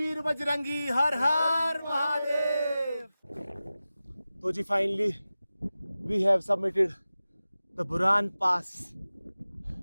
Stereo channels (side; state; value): both; inverted; correlation -0.95